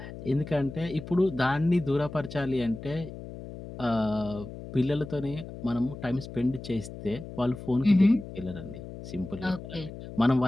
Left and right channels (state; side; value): noise; left; hum, 12 dB below the sound